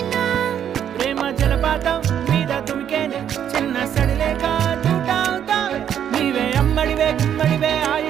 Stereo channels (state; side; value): quieter; left; 9.4 dB